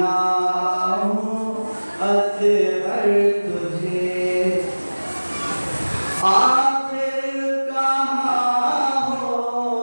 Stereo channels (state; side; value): inverted; both; correlation -1.00